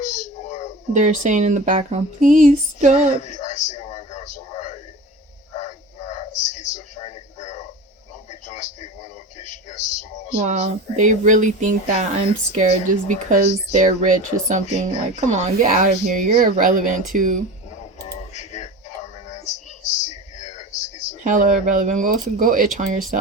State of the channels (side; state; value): both; normal; correlation 0.32